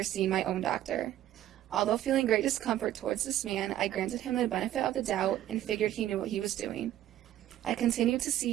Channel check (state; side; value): quieter; left; 12.8 dB